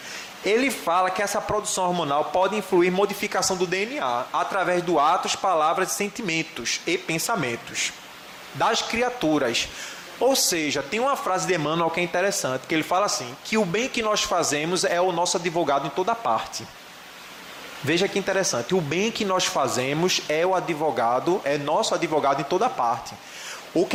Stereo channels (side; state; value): both; identical; correlation 1.00